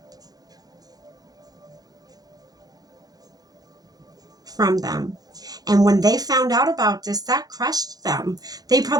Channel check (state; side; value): late; left; 0.19 ms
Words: From them. And when they found out about this, that crushed them. They